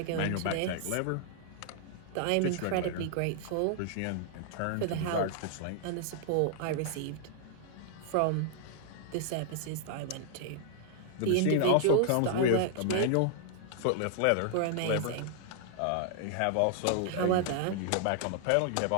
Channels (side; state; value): both; different; correlation -0.01